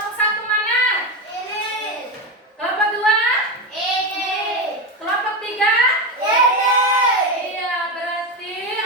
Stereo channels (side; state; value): both; normal; correlation 0.15